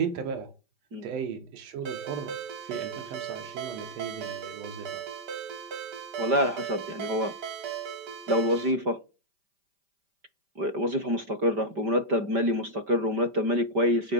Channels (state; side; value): late; left; 5.1 ms